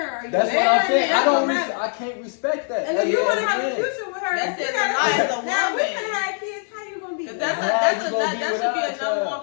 are you? That's what I'm saying. That's gonna matter. I can't respect that. And if you want to have a Again. future with her, That's you it, gotta- the life of the now we woman. can have kids. How you gonna be? That you gonna be should without be a a number child. one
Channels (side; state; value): right; silent; 57 dB below the other